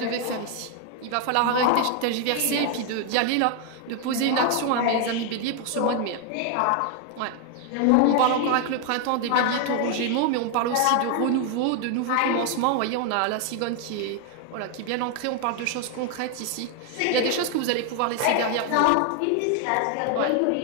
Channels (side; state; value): both; different; correlation 0.00